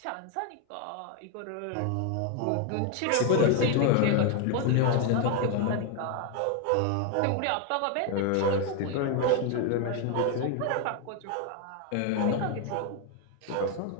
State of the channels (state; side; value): different; both; correlation 0.01